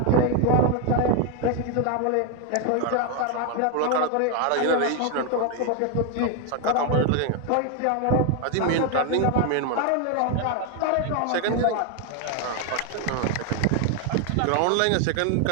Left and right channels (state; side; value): different; both; correlation 0.01